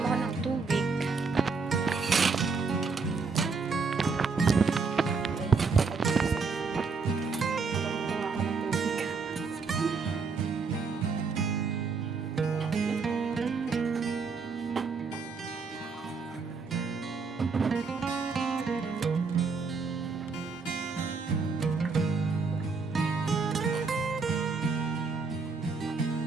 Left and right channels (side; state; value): left; quieter; 4.8 dB